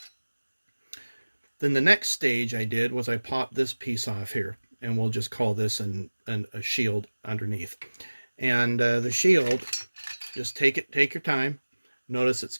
Then the next stage I did was I popped this piece off here, and we'll just call this a shield underneath. And the shield, just take your time. Notice it's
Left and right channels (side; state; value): both; inverted; correlation -1.00